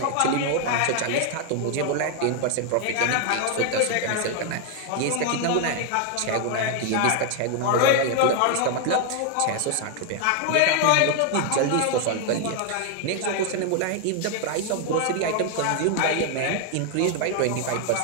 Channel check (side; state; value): both; different; correlation 0.00